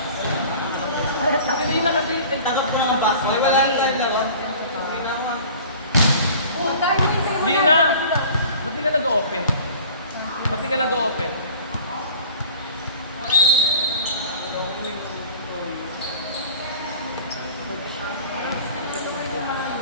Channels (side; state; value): both; inverted; correlation -0.43